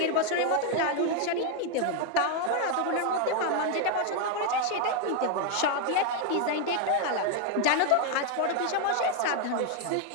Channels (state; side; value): different; both; correlation 0.01